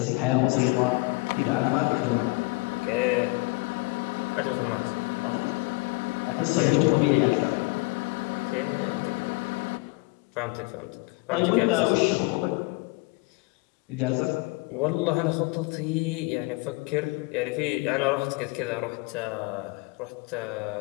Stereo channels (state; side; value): quieter; right; 26.0 dB